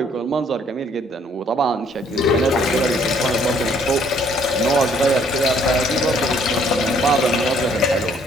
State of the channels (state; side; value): normal; both; correlation 0.63